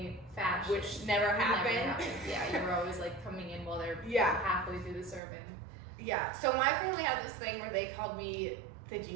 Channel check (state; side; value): drops out; left; at 5.2 s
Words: fashion. Which never happened. Yeah, you were always like coming in while they're Yeah. halfway through the sermon. Yeah. So my family had this thing where they called me the